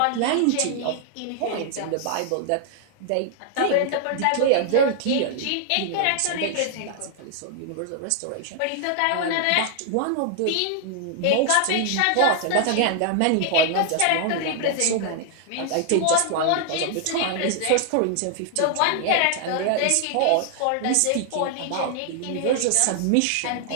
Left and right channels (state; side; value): different; both; correlation 0.00